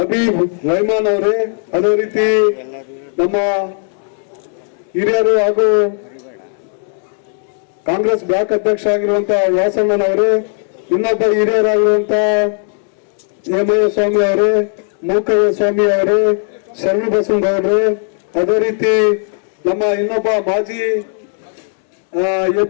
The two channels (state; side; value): silent; right; 57 dB below the other